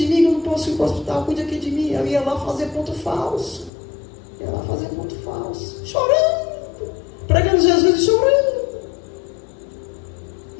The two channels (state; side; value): drops out; right; at 3.7 s